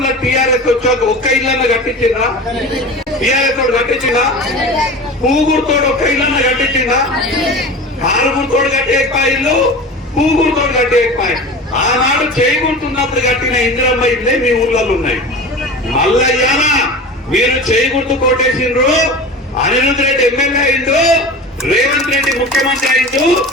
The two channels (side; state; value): both; normal; correlation 0.33